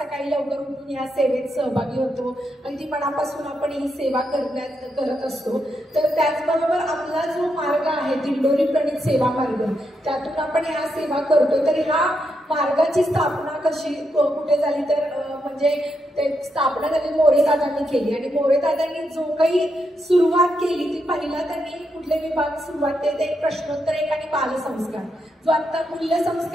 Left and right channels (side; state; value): both; normal; correlation 0.82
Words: लवकर उठून ह्या सेवेत सहभागी होतो आणि ती मनापासून आपण ही सेवा करत असतो. तर त्याचबरोबर आपला जो मार्ग आहे दिंडोरी प्रणित सेवा मार्ग, त्यातून आपण ह्या सेवा करतो. तर ह्या मार्गाची स्थापना कशी कुठे झाली, तर म्हणजे ते स्थापना त्यांनी मोरेदादांनी केली आणि मोरेदादांनी जो काही सुरुवात केली ती पहिला त्यांनी कुठले विभाग सुरुवात केले, ते प्रश्नोत्तर एक आणि बालसंस्कार. जो आता मूल्य